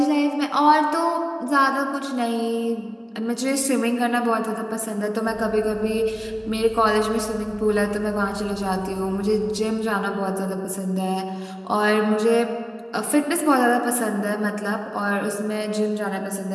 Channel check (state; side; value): identical; both; correlation 1.00